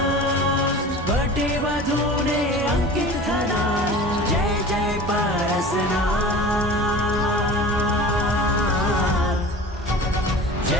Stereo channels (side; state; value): both; normal; correlation 0.38